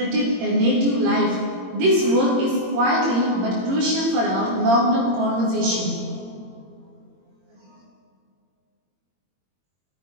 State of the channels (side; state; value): left; late; 22 ms